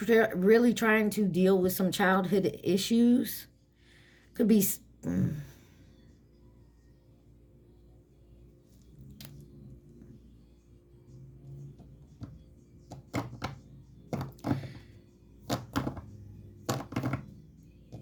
really trying to deal with some childhood issues. Could be...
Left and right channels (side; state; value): both; identical; correlation 1.00